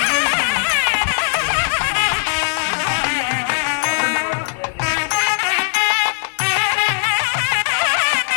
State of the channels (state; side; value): silent; right; digital silence